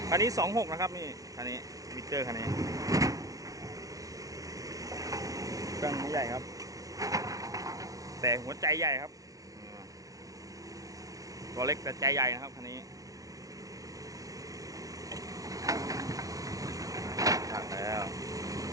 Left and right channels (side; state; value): left; late; 0.17 ms